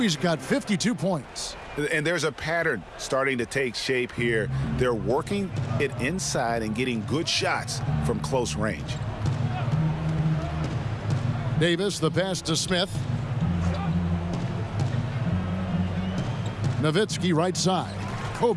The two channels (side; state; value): both; identical; correlation 1.00